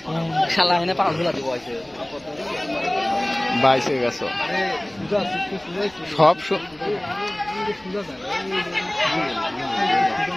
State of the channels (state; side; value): noise; right; rumble, 29 dB below the sound